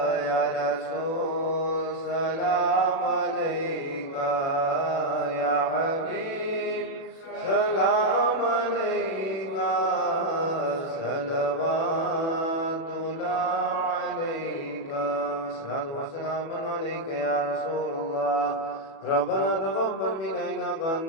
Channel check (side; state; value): right; late; 37 ms